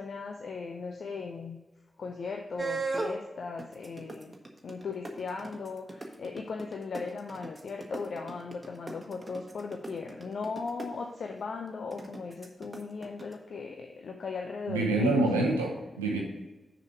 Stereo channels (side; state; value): both; normal; correlation 0.70